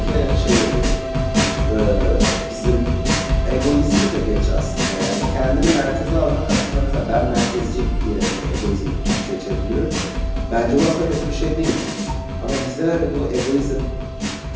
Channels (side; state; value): both; identical; correlation 1.00